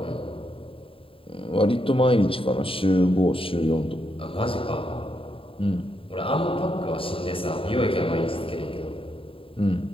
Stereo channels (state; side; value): late; right; 0.26 ms